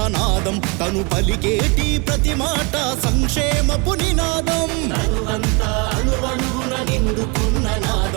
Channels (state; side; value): quieter; left; 30.2 dB